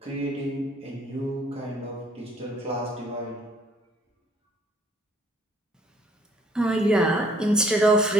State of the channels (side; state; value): both; normal; correlation 0.61